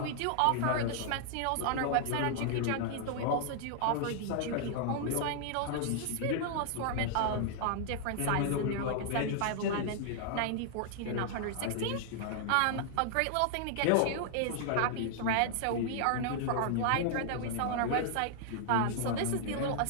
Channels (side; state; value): both; different; correlation -0.01